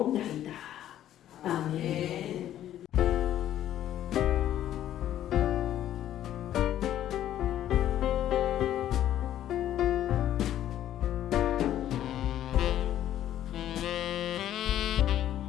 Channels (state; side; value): quieter; right; 11.9 dB